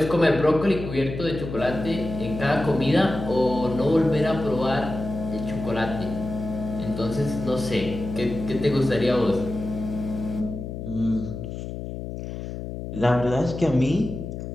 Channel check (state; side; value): noise; left; hum, 7 dB below the sound